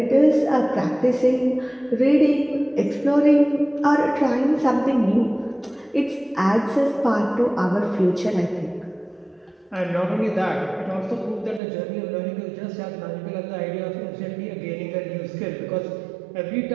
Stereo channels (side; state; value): left; drops out; at 11.6 s